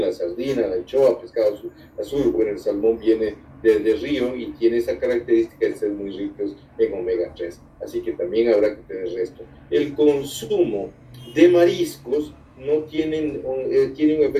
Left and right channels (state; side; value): identical; both; correlation 1.00